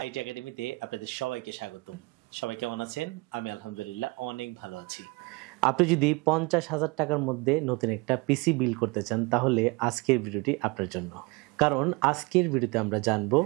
একাডেমিতে আপনাদের সবাইকে স্বাগতম। সবাই কেমন আছেন? আমি আলহামদুলিল্লাহ অনেক ভালো আছি। আপনি যদি 50,000 টাকার মধ্যে নতুন একটা পিসি বিল্ড করতে চান তাহলে আজকের ভিডিওটি আপনার জন্য। কারণ আজকের ভিডিওতে আমরা জানবো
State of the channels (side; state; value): left; quieter; 26.0 dB